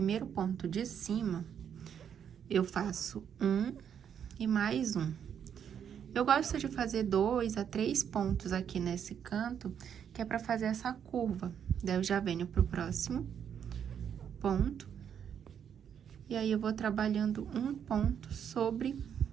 ponto de cima, eu faço 1 e mais 1. Eu gosto de fazer 2 a 3 pontos aqui nesse canto, que é pra fazer essa curva. Daí, eu já venho pro próximo ponto. E aí, eu vou trabalhando um ponto sobre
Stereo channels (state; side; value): quieter; left; 8.4 dB